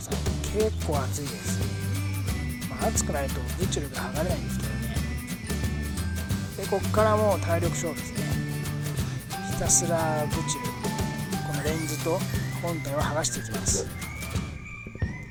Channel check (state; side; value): identical; both; correlation 1.00